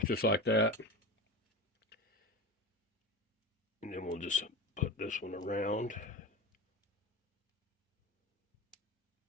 just like that. And then we'll just put this one around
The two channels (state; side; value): normal; both; correlation 0.27